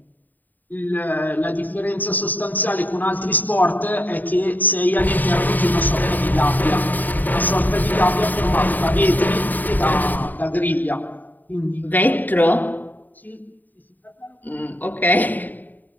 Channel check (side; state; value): right; late; 0.086 ms